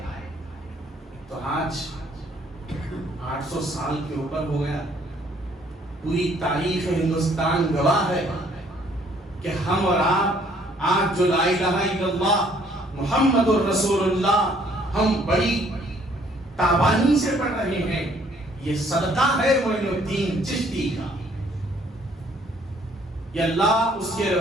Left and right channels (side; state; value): both; normal; correlation 0.63